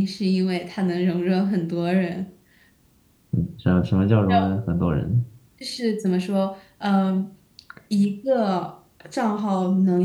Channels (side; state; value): both; identical; correlation 1.00